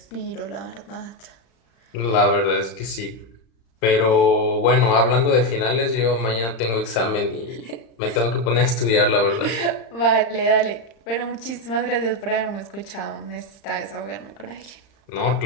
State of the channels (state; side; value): late; right; 35 ms